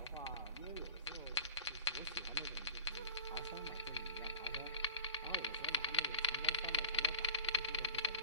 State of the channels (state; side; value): inverted; both; correlation -0.40